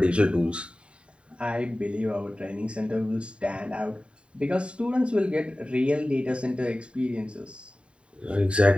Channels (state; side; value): late; left; 0.056 ms